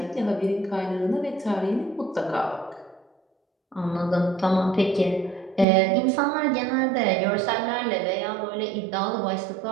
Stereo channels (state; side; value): drops out; left; at 5.7 s